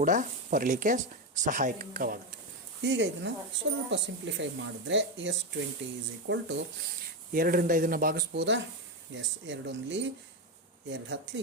ಬರಲಿಕ್ಕೆ ಸಹಾಯಕವಾಗುತ್ತೆ. ಈಗ ಇದನ್ನು ಸ್ವಲ್ಪ ಸಿಂಪ್ಲಿಫೈ ಮಾಡಿದ್ರೆ S20 = 2ರಿಂದ ಇದನ್ನು ಭಾಗಿಸ್ಬೋದಾ? ಎಸ್. 2 1 2 10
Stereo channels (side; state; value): both; normal; correlation 0.10